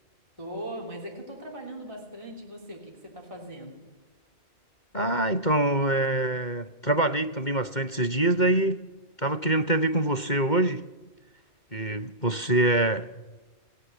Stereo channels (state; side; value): late; right; 2.2 ms